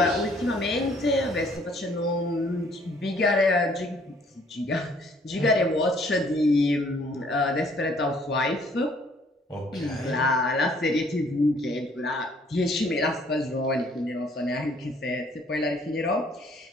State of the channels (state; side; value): normal; both; correlation 0.61